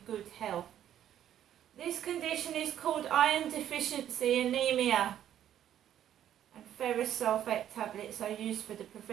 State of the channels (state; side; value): quieter; left; 10.8 dB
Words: good health. This condition is called iron deficiency anemia. And ferrous sulphate tablets are used for the